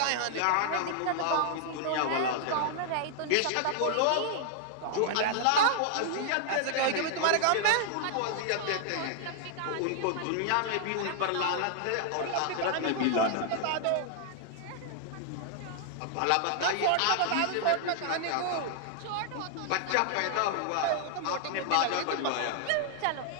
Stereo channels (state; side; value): different; both; correlation -0.01